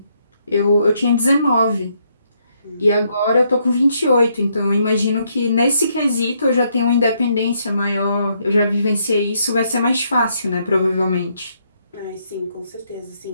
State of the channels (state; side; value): inverted; both; correlation -0.74